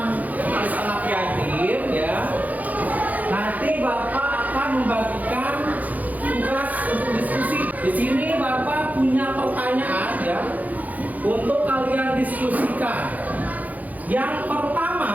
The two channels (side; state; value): left; late; 0.079 ms